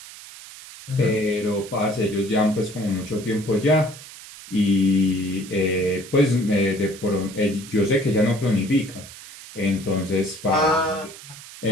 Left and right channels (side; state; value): right; noise; hiss, 16 dB below the sound